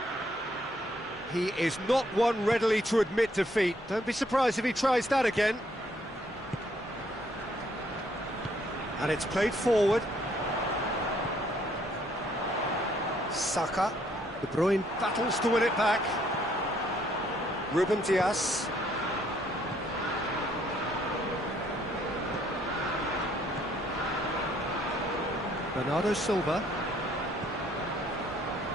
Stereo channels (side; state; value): both; normal; correlation 0.67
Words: He is not one readily to admit defeat. Don't be surprised if he tries that again. And it's played forward. Saka. De Bruyne battles to win it back. Ruben Dias. Bernardo Silva.